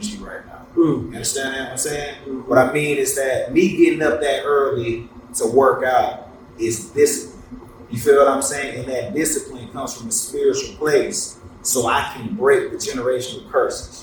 right now. You understand what I'm saying? What I mean is that me getting up that early to work out is discipline. You feel what I'm saying? And that discipline comes from a spiritual place, so I can break the generational curses.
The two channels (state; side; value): identical; both; correlation 1.00